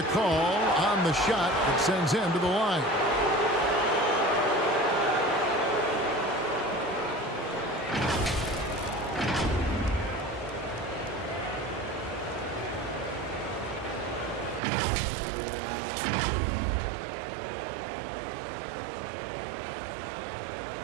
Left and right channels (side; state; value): left; drops out; at 14.6 s